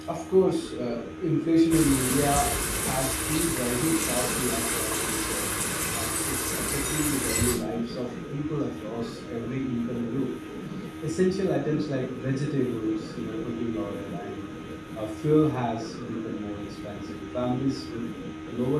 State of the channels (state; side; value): identical; both; correlation 1.00